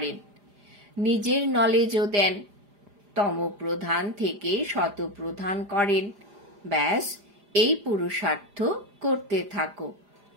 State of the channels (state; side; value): late; left; 4.9 ms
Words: নিজের নলেজও দেন, তমপ্রধান থেকে শতপ্রধান করেন। ব্যাস এই পুরুষার্থ করতে থাকো।